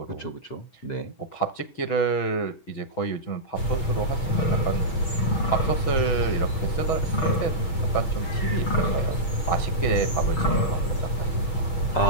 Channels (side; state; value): right; late; 6.2 ms